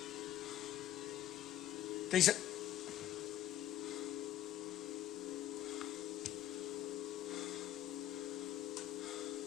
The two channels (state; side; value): quieter; right; 12.6 dB